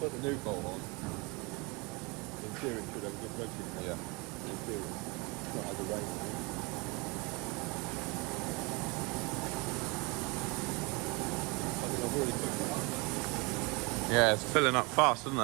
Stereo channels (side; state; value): left; quieter; 28.1 dB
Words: the new bolt on, in theory it should have a good rotating head. Yeah. In theory. It's not as a rain. I think I've already picked it up. Yeah, it's filling up fast, isn't